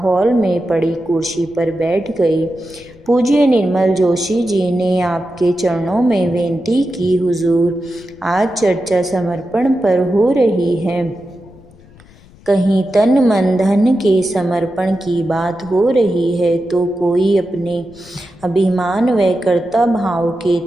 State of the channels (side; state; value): left; noise; rumble, 25 dB below the sound